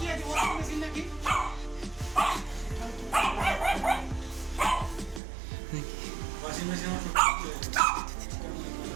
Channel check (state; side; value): drops out; left; at 5.2 s